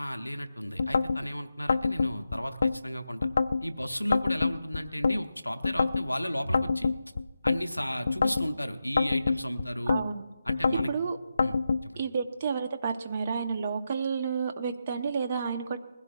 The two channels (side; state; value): both; inverted; correlation -0.88